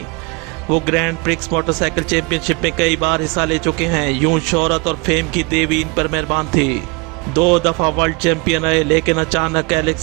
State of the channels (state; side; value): quieter; left; 26.9 dB